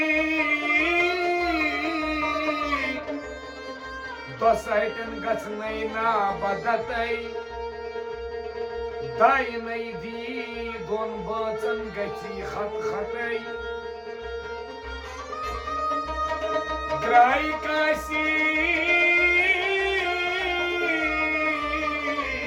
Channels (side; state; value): both; identical; correlation 1.00